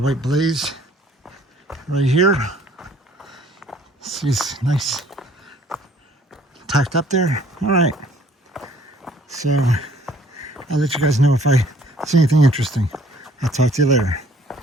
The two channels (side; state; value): both; normal; correlation 0.58